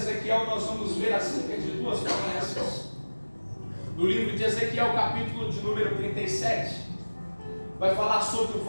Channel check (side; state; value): both; inverted; correlation -1.00